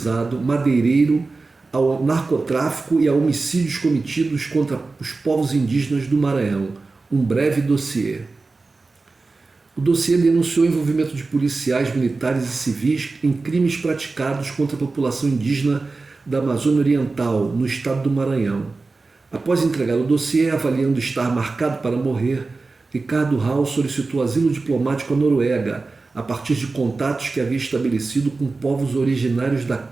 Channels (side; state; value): left; quieter; 3.8 dB